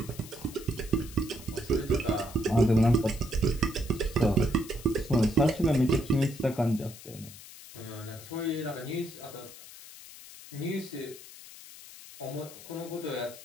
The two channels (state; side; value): noise; left; hiss, 17 dB below the sound